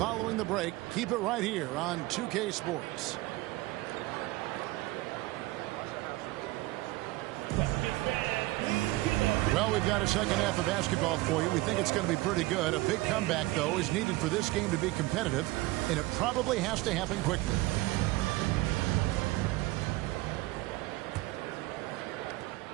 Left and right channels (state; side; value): quieter; left; 19.8 dB